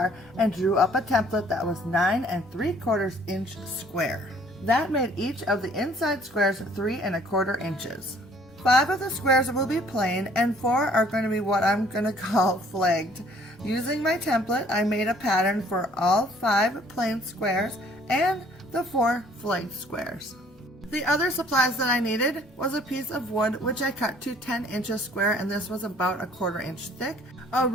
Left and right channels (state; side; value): normal; both; correlation 0.58